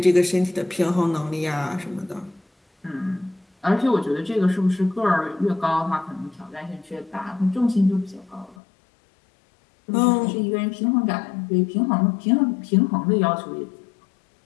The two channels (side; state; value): right; drops out; at 8.6 s